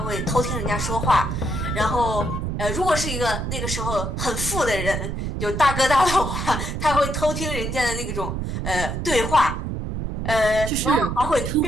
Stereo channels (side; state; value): right; noise; rumble, 3 dB below the sound